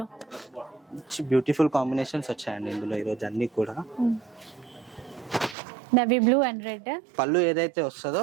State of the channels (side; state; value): left; drops out; at 5.6 s